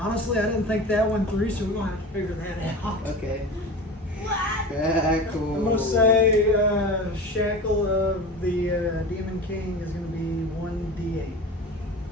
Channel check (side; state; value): both; normal; correlation 0.32